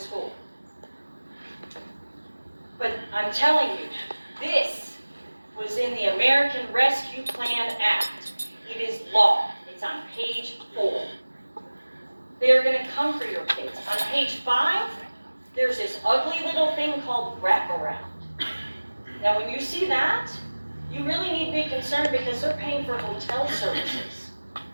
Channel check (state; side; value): inverted; both; correlation -1.00